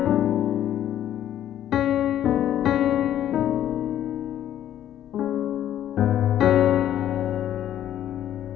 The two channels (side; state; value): right; quieter; 11.4 dB